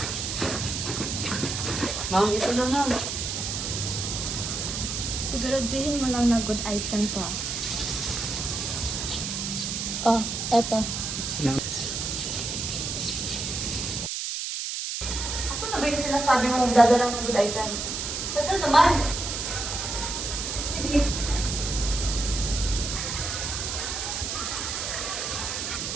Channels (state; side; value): noise; right; hiss, 3 dB below the sound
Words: Ma'am, ito na ma'am. Siguraduhin mo lang na good item to. Oh, eto. Asan na ba yung sinasabi mo magdadala ng good item? Tagal naman. Sige.